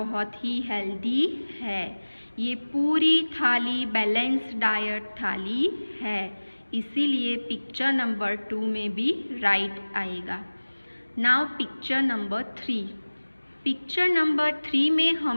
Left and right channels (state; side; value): inverted; both; correlation -1.00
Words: ही हेल्दी है। ये पूरी थाली बैलेंस डाइट थाली है, इसीलिए पिक्चर नंबर 2 में भी राइट आएगा। नाउ पिक्चर नंबर 3 में